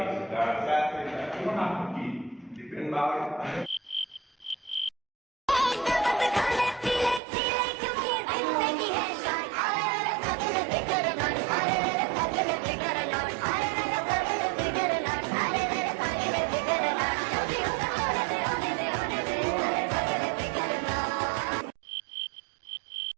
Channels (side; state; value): left; drops out; at 7.2 s